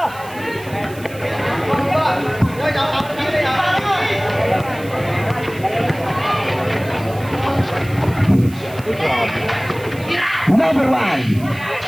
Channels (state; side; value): noise; right; hiss, 20 dB below the sound